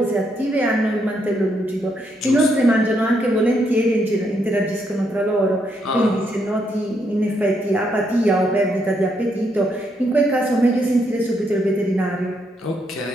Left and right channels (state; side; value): normal; both; correlation 0.76